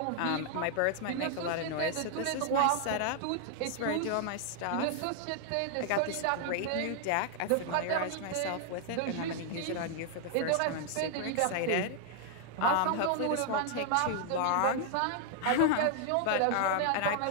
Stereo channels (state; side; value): different; both; correlation 0.00